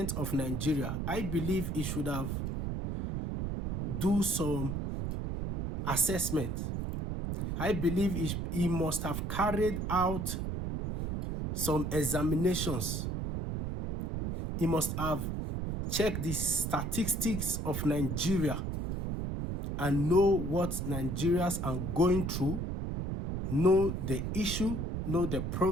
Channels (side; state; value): right; noise; rumble, 2 dB below the sound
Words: of Nigeria, I believe he should have do some assessment. I believe he must have carried out some examinations. He must have checked the statistics of Nigeria and know what Nigerians are going through, know the issue, know the